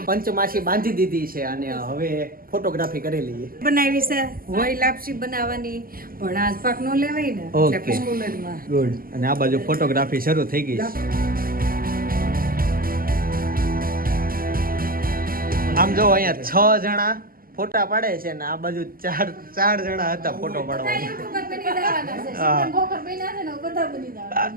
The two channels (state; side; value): late; left; 0.42 ms